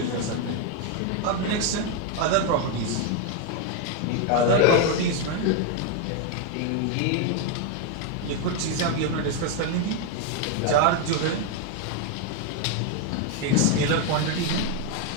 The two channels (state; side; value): different; both; correlation 0.01